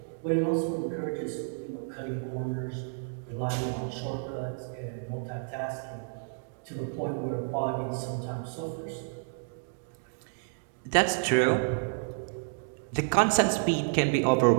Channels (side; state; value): left; silent; digital silence